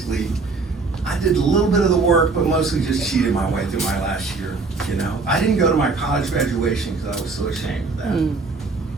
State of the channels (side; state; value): left; quieter; 4.1 dB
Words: I did a little bit of the work, but mostly just cheated my way through my last year, you know. I didn't go to my college graduation because I was so ashamed of that.